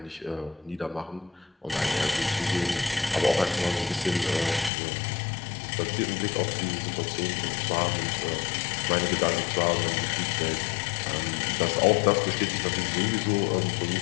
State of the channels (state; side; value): drops out; right; at 4.7 s